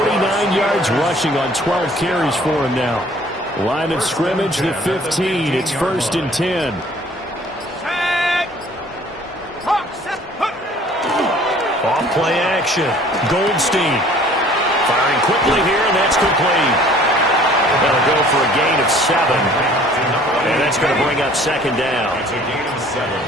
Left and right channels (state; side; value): normal; both; correlation 0.53